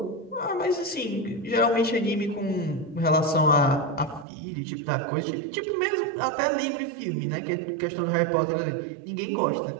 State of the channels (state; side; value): drops out; left; at 4.2 s